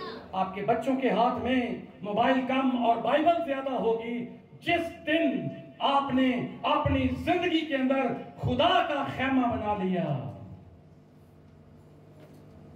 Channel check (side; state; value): both; identical; correlation 1.00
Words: आपके बच्चों के हाथ में मोबाइल कम और बाइबल ज्यादा होगी जिस दिन आपने अपनी जिंदगी के अंदर खुदा का खेमा बना लिया।